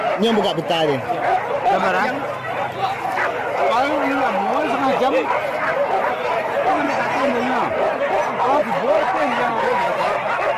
Ini yang buka peta ni. Gambaran. Kalau ini lah, mau setengah jam. Kau nak kata mana? Oh, dibuat pun yang.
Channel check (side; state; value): both; identical; correlation 1.00